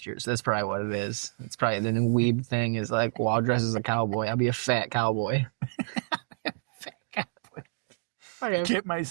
year, so that's probably what it is. It's probably the new weeb thing is like, well, I'll dress as a cowboy. I'll be a fat cowboy. Fat cowboy. I get my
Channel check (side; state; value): left; silent; digital silence